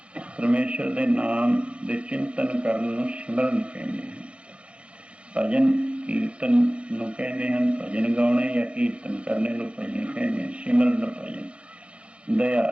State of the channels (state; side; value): late; left; 0.059 ms